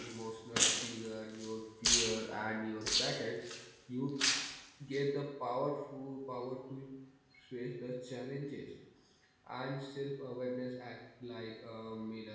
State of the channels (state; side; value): identical; both; correlation 1.00